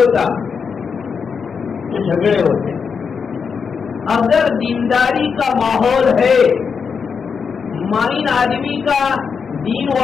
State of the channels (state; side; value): quieter; right; 6.0 dB